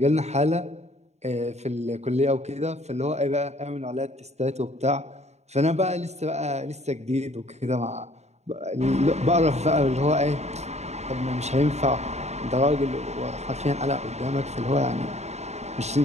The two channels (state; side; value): late; left; 0.32 ms